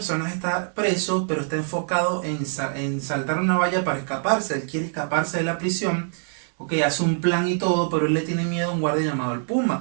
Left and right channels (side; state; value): left; silent; digital silence